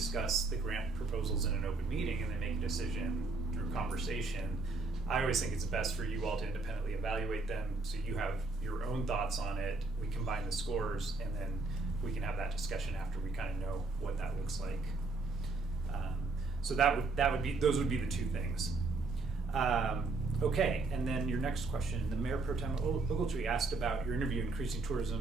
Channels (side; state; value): left; quieter; 3.6 dB